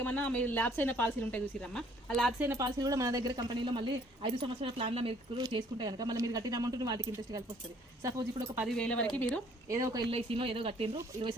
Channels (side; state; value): both; normal; correlation 0.60